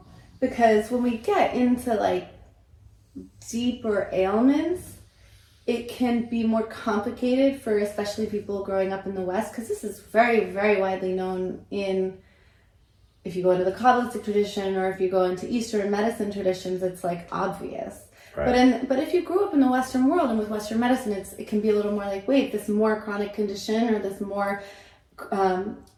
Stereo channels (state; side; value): identical; both; correlation 1.00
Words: because when we get into like deeper ailments, it can be more complicated for especially people growing up in the West, because this is very, very widely known in, if you go into the Kabbalistic tradition or if you go into Eastern medicine traditions, it's like obvious. Right. But if you grew up in the Western world and with Western medicine, it can be a little more like, wait, this more chronic condition or this more